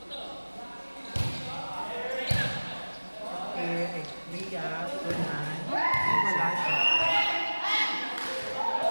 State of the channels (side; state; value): both; inverted; correlation -1.00